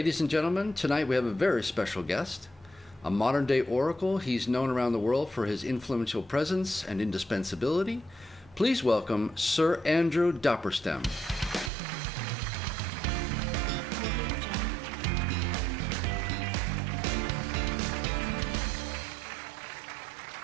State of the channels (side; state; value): left; drops out; at 11.7 s